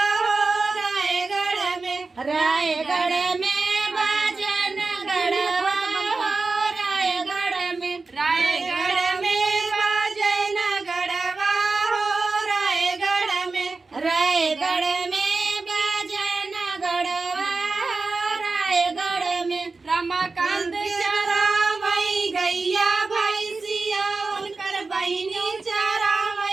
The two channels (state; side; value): quieter; left; 3.9 dB